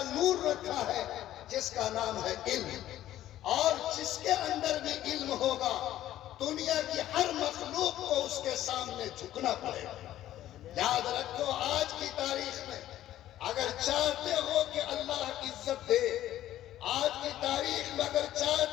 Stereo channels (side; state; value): right; quieter; 13.2 dB